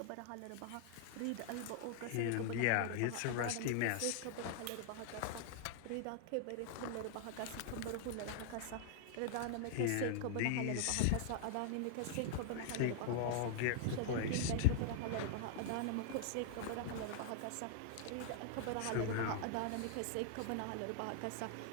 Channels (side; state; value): both; different; correlation -0.01